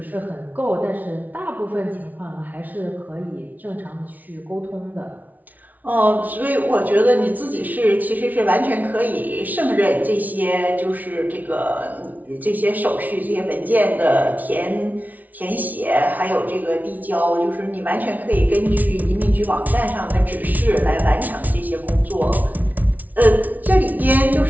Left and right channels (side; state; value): left; late; 0.077 ms